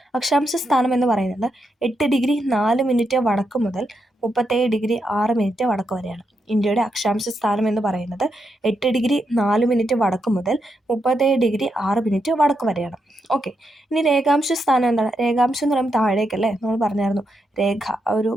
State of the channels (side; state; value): both; normal; correlation 0.83